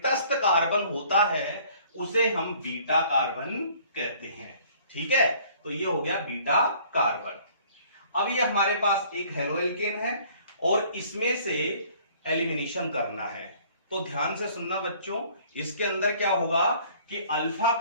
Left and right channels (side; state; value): both; inverted; correlation -0.56